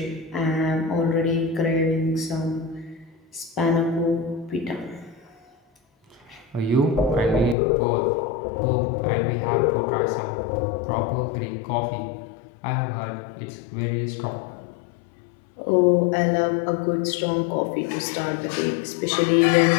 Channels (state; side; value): drops out; right; at 7.6 s